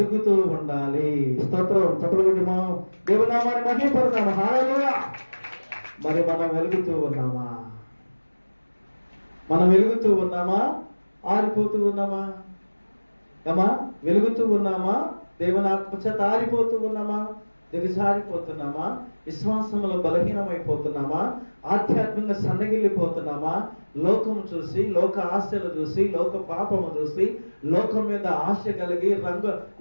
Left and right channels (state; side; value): inverted; both; correlation -1.00